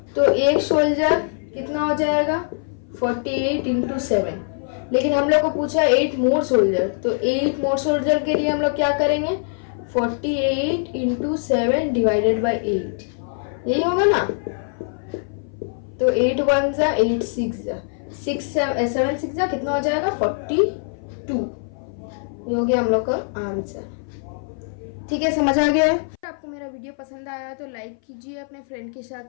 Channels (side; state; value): right; silent; 58 dB below the other